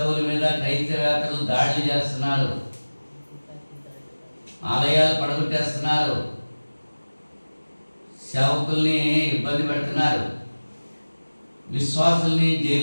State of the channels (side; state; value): both; inverted; correlation -1.00